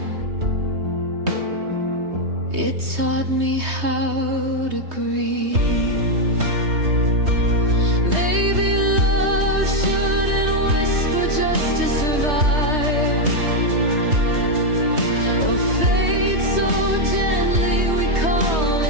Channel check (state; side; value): late; left; 3.2 ms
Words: It taught me how to grieve. Maybe love shouldn't whisper just to survive, or fade so gently we call